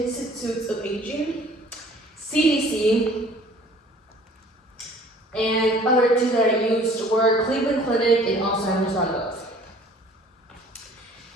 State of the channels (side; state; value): both; normal; correlation 0.52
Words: of Aging, CDC, and other two that I used were Cleveland Clinic and Alzheimer's.gov.